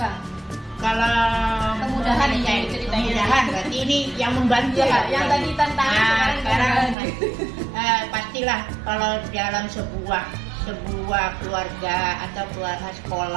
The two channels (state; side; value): drops out; left; at 7.0 s